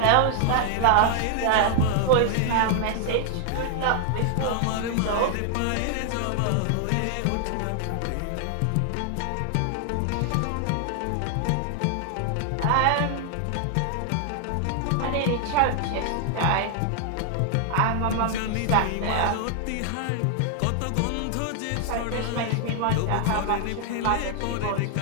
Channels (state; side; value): different; both; correlation 0.00